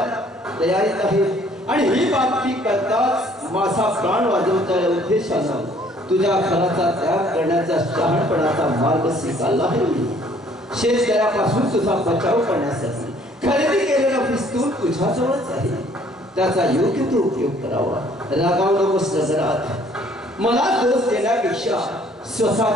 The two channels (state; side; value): normal; both; correlation 0.59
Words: तयारीत आहेत, आणि ही बातमी करताच माझा प्राण वाजवण्याच्या उद्देशानं तुझ्या घराचा त्याग करण्याचा शहाणपणाचा मार्ग स्वीकारला आहे. शेतकऱ्यापासून तुझा बचाव करण्यासाठी खरेदी केलेला पिस्तूल तुझ्याजवळच आहे. त्याचा योग्य तो उपयोग करावा. रागावू नकोस नजरात. मला दोष देण्यापेक्षा